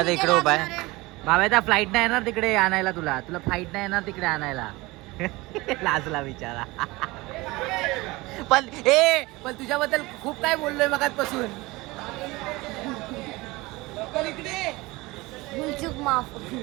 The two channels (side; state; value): left; quieter; 21.8 dB